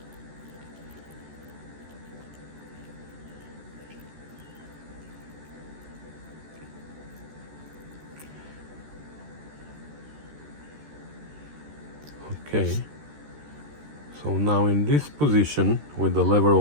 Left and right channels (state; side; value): late; left; 13 ms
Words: Okay, so now in this position with the lever